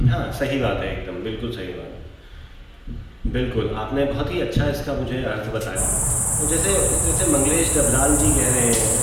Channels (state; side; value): identical; both; correlation 1.00